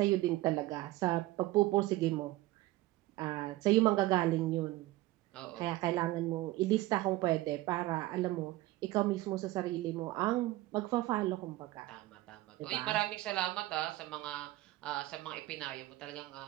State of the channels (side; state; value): left; quieter; 17.8 dB